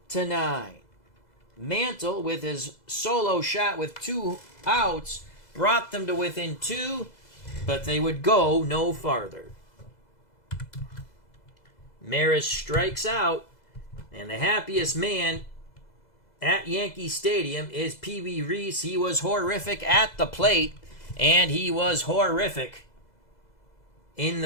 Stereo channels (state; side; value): late; right; 2.0 ms